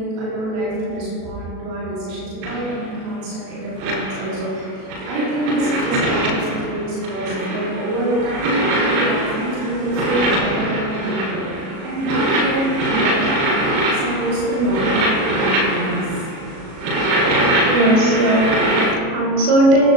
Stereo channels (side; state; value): left; late; 37 ms